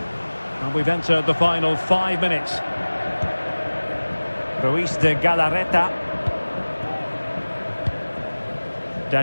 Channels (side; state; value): both; inverted; correlation -1.00